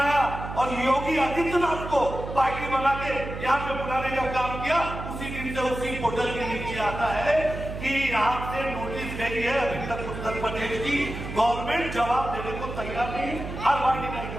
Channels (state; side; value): noise; right; hum, 8 dB below the sound